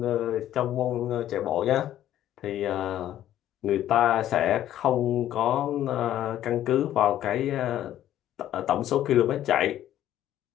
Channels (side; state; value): right; quieter; 12.2 dB